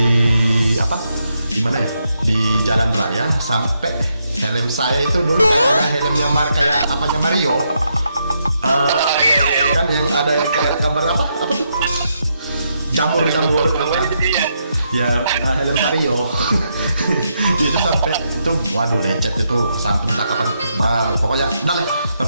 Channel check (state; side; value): inverted; both; correlation -0.80